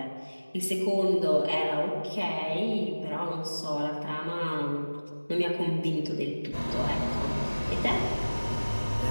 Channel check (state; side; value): inverted; both; correlation -1.00